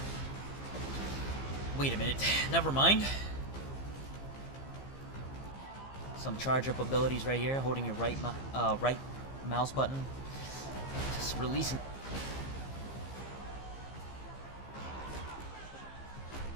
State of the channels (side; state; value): right; late; 15 ms